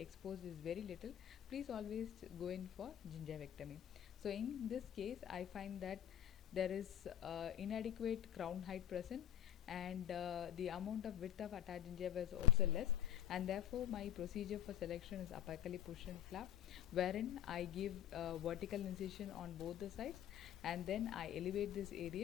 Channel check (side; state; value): right; quieter; 11.0 dB